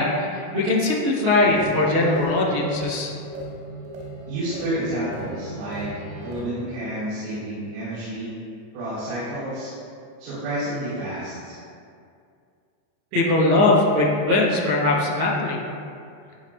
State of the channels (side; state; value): left; late; 33 ms